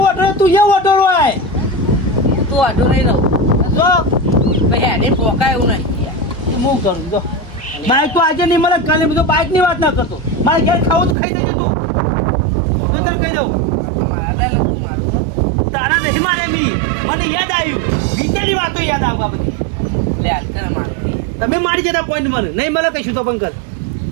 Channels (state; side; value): drops out; left; at 11.2 s